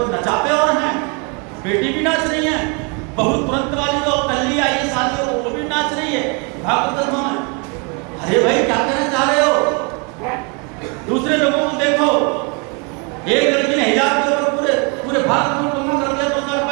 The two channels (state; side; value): quieter; left; 33.7 dB